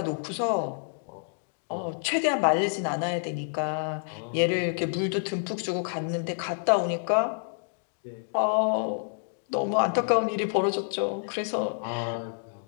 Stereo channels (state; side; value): silent; right; digital silence